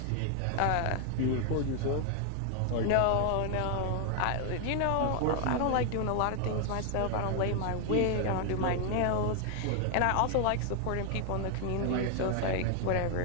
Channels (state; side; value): different; both; correlation 0.00